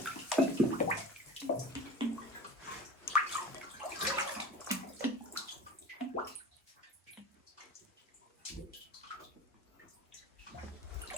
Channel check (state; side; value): normal; both; correlation 0.35